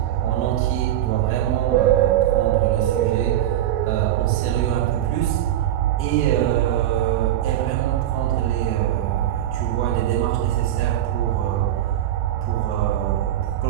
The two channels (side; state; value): left; quieter; 12.2 dB